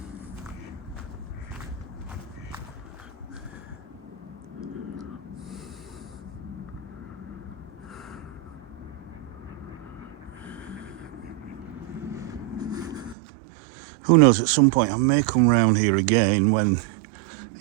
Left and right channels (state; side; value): drops out; left; at 13.2 s